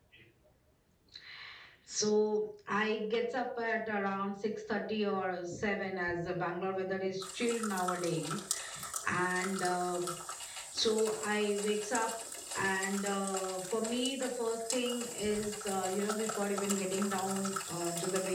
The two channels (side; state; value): both; identical; correlation 1.00